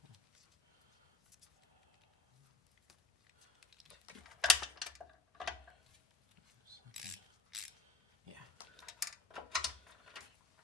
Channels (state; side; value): quieter; right; 3.7 dB